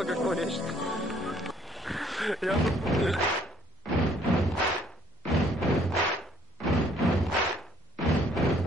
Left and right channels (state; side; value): normal; both; correlation 0.62